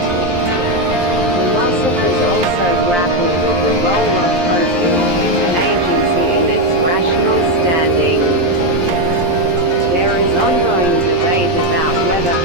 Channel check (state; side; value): late; left; 11 ms